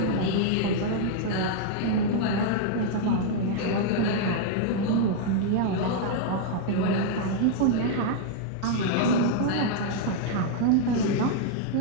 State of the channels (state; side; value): different; both; correlation 0.00